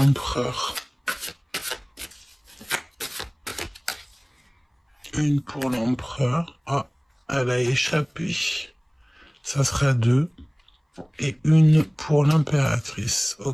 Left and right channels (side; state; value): both; identical; correlation 1.00